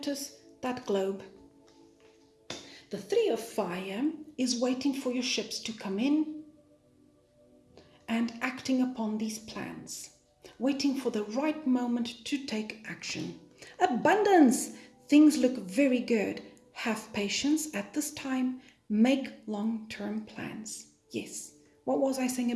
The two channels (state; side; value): identical; both; correlation 1.00